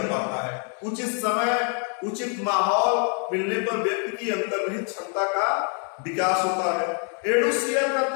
पाता है। उचित समय, उचित माहौल मिलने पर व्यक्ति की अंतर्निहित क्षमता का विकास होता है। एडुसियर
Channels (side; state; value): right; quieter; 38.8 dB